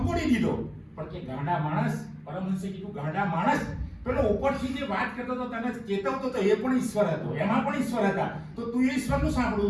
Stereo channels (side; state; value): both; identical; correlation 1.00